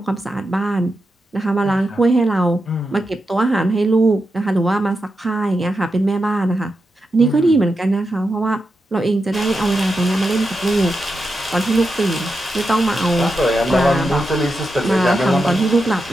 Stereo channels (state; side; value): normal; both; correlation 0.88